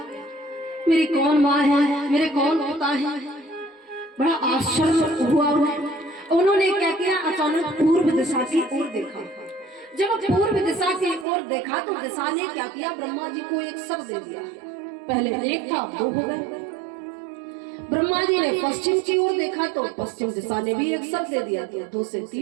मेरी कौन माँ है, मेरे कौन पिता है। बड़ा आश्चर्य हुआ उन्होंने क्या किया, अचानक पूर्व दिशा की ओर देखा। जब पूर्व दिशा की ओर देखा तो दिशा ने क्या किया, ब्रह्मा जी को एक सर दे दिया। पहले एक था, दो हो गए। ब्रह्मा जी ने पश्चिम की ओर देखा तो पश्चिम दिशा ने भी एक सर दे दिया, दो से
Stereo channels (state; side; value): drops out; left; at 11.2 s